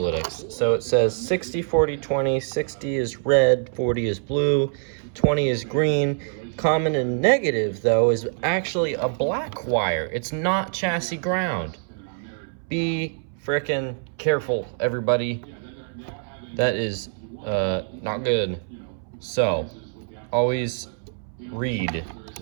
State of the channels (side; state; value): left; silent; 62 dB below the other